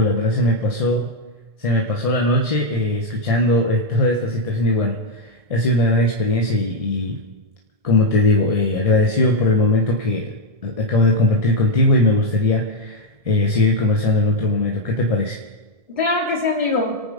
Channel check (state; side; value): late; left; 1.7 ms